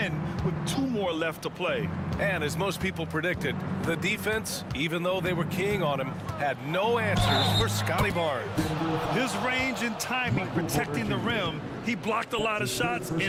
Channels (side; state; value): both; identical; correlation 1.00